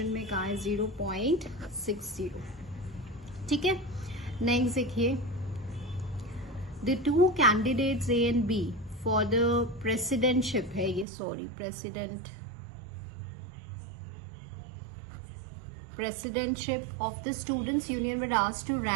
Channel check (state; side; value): drops out; left; at 11.1 s